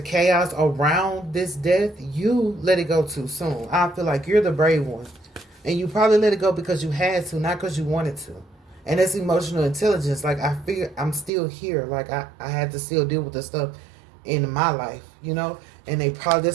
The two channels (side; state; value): left; drops out; at 11.3 s